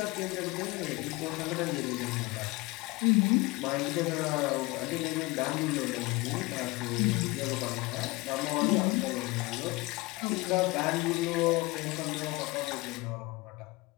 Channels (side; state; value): right; quieter; 22.9 dB